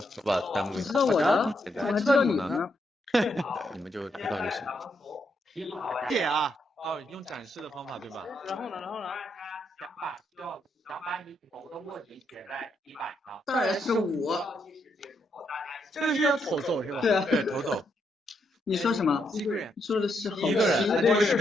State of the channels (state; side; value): normal; both; correlation 0.78